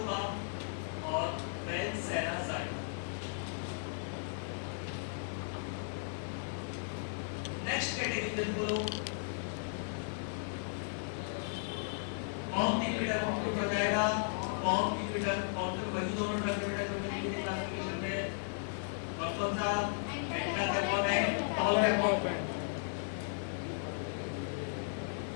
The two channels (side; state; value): right; silent; digital silence